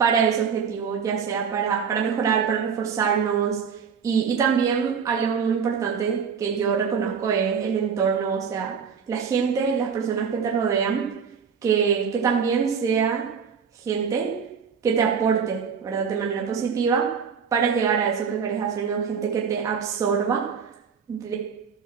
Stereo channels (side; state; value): left; quieter; 6.5 dB